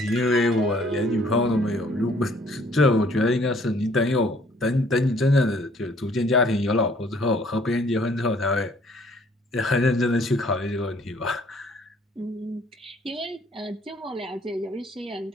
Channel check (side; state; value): both; normal; correlation 0.60